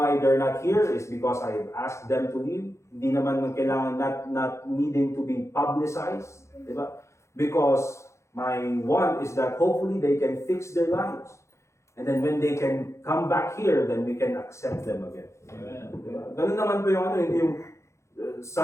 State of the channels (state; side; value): late; right; 0.14 ms